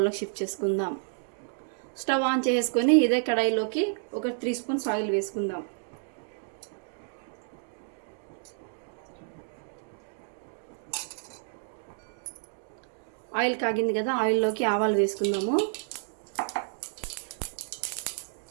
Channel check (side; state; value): left; silent; digital silence